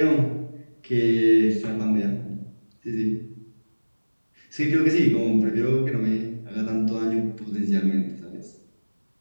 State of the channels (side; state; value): both; inverted; correlation -1.00